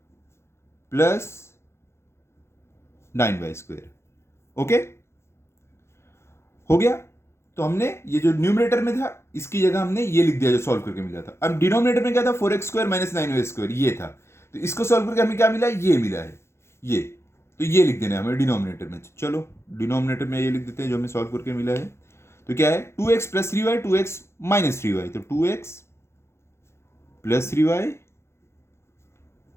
plus 9y square, okay हो गया। तो हमने ये जो न्यूमरेटर में था इसकी जगह हमने ये लिख दिया जो सॉल्व करके मिला था। अब डिनोमिनेटर में क्या था, 4x square minus 9y square ये था, तो इसको सॉल्व करके हमें क्या मिला, ये मिला है ये, तो ये लिख देना है हमें डिनोमिनेटर में। चलो डिनोमिनेटर में ये लिख देते हैं जो हमें सॉल्व करके मिला है, तो क्या है 2x plus 3y, 2x minus 3y, तो 2x plus 3y,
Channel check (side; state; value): right; late; 0.13 ms